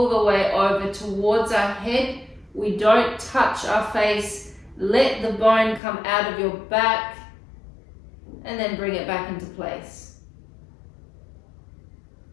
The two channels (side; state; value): right; drops out; at 5.8 s